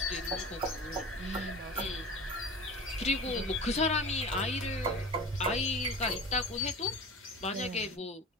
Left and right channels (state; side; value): normal; both; correlation 0.34